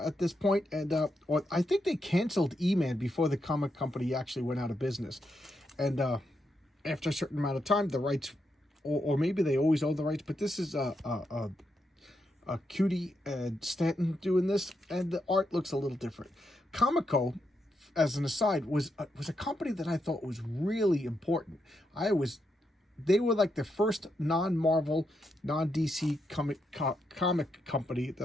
this point, and or I think they canceled E-Man before the comic company actually went out of business. And after a certain amount of time, the rights, or maybe they always own the rights, but this is a Cutie and Stanton doing this, and the art looks a little different. Comico, as an aside, was a company that I thought was really important. They were like the first non-Marvel, non-DC comic company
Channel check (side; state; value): both; normal; correlation 0.82